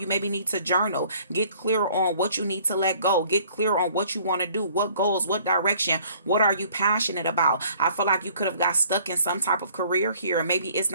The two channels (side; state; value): both; inverted; correlation -0.57